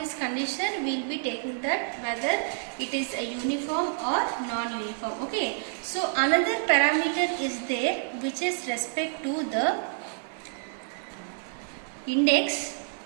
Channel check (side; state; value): left; silent; 59 dB below the other